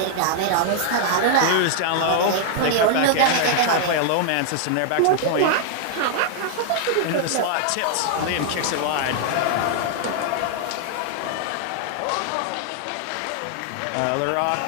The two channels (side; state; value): both; different; correlation 0.00